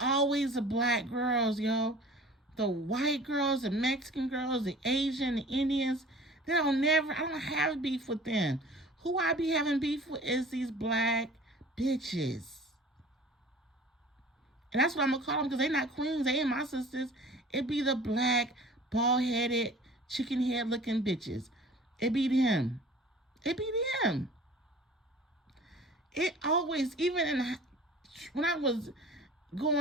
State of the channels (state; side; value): normal; both; correlation 0.45